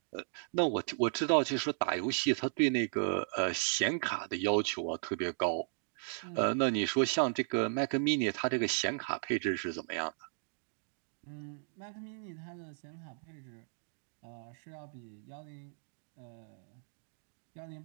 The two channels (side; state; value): left; silent; digital silence